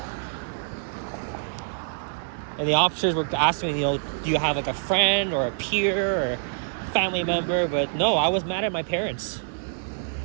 And the officers were asking me, do you have like a friend or a peer or family member? But no, I was mad at my parents.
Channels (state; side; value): silent; left; digital silence